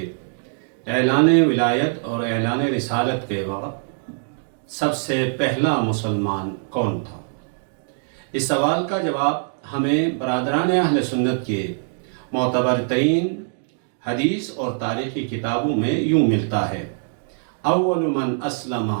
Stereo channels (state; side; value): silent; left; 64 dB below the other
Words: اعلان ولایت اور اعلان رسالت کے وقت سب سے پہلا مسلمان کون تھا؟ اس سوال کا جواب ہمیں برادران اہل سنت کے معتبر ترین حدیث اور تاریخی کتابوں میں یوں ملتا ہے: اول من اسلم